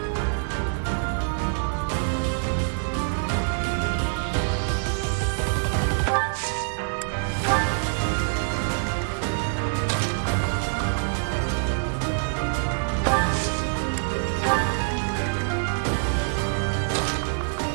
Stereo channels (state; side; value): silent; left; digital silence